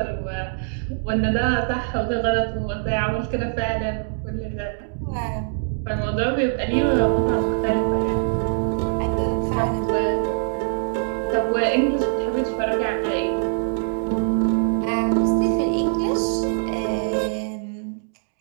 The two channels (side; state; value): left; silent; digital silence